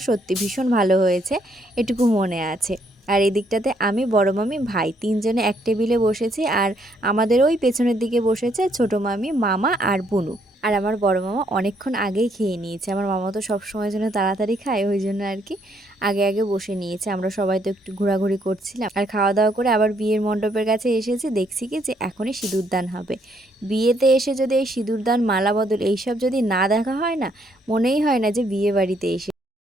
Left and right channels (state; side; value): normal; both; correlation 0.70